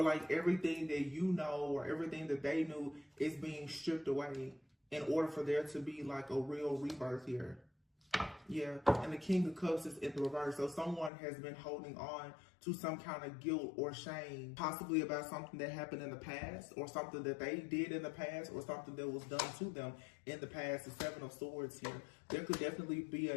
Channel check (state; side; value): drops out; right; at 11.1 s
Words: like everything that you know or everything that they knew is being stripped away in order for there to be like a real rebirth here. Yeah, and the King of Cups is in the reverse. So someone has been holding on to some kind of guilt or shame, possibly about something that happened in the past, or something that they did in the past, or something that was done to them in the past. The Seven of Swords here. There could definitely be